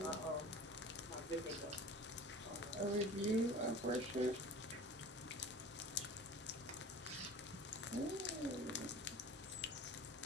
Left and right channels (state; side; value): normal; both; correlation 0.40